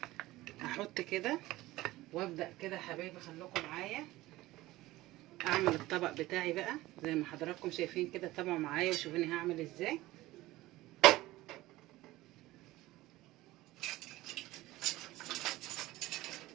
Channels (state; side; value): quieter; left; 17.8 dB